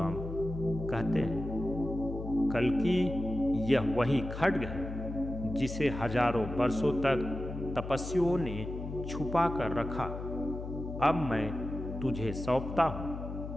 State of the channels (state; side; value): noise; left; hum, 8 dB below the sound